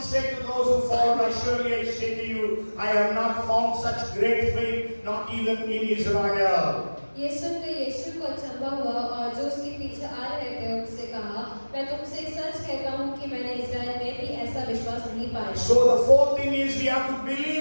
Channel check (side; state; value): both; inverted; correlation -1.00